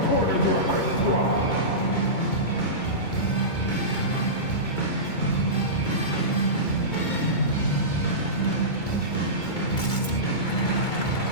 corner of the right.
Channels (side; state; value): right; late; 2.2 ms